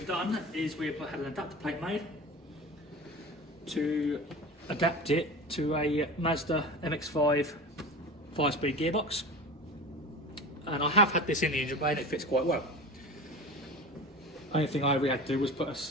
done is we've had an adapter plate made to adapt it to a Mazda MX-5 5-speed gearbox. And I have had this in the engine bay and it fits quite well. Only thing I really had to do was put a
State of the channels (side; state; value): both; normal; correlation 0.33